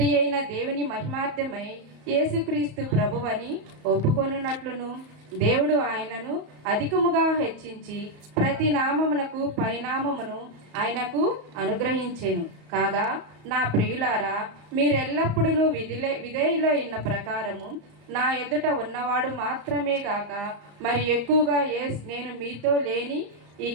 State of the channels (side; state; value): left; late; 34 ms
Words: అయిన దేవుని మహిమార్థమై యేసుక్రీస్తు ప్రభువని ఒప్పుకొనున్నట్లును దేవుడు ఆయనను అధికముగా హెచ్చించి ప్రతి నామమునకు పైనామమును ఆయనకు అనుగ్రహించెను. కాగా నా ప్రియులారా, మీరెల్లప్పుడూ విధేయులైన ప్రకారము నా ఎదుట ఉన్నవాడు మాత్రమే గాక మరి ఎక్కువగా నేను మీతో లేని ఈ